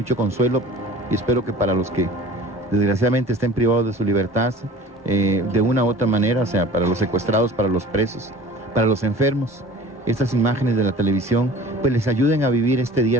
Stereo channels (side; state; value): both; normal; correlation 0.43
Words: consuelo y espero que para los que desgraciadamente estén privados de su libertad, de una u otra manera, o sea, para los secuestrados, para los presos, para los enfermos, estas imágenes de la televisión pues les ayuden a vivir este